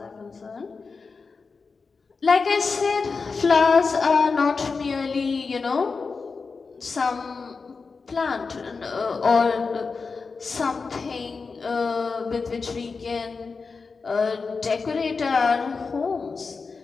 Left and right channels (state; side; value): quieter; right; 4.6 dB